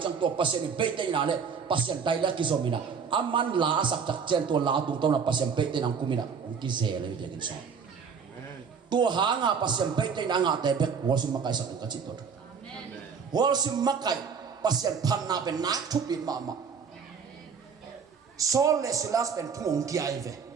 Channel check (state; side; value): quieter; left; 6.2 dB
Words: to pasien beitei na le pasien dai la ki zomina aman la sak tak chen to la tung to na pasien pe te nang kumina ong ki ze le de so to ha nga pasien pe te na nga te be worship makai sak ka chi to worship makai pasien phan na ben na thu pin ma sol le silas ben thung ki ai ve